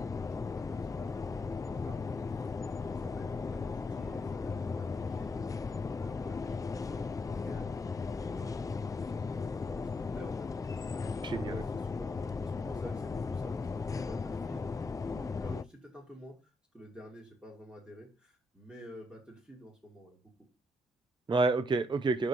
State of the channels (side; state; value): both; normal; correlation 0.79